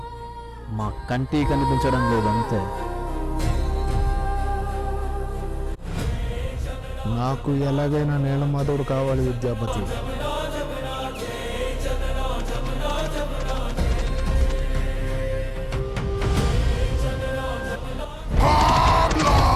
మా కంటికి కనిపించడం లేదు అంతే. నాకు ఎలాగైనా నీలమాధవుడు కావాలి విద్యాపతి.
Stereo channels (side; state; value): both; identical; correlation 1.00